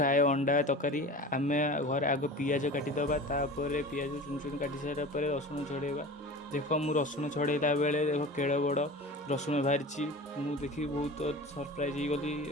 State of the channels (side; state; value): both; normal; correlation 0.35